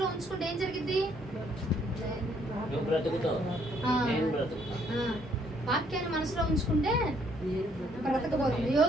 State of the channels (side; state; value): both; normal; correlation 0.67